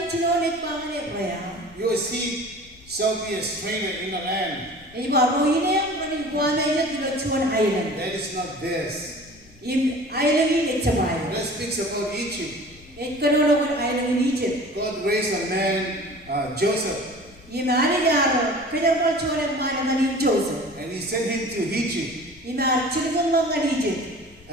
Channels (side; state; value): left; noise; rumble, 25 dB below the sound